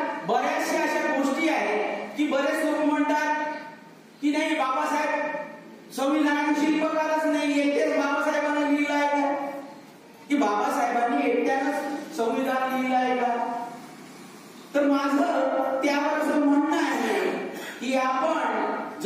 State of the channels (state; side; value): identical; both; correlation 1.00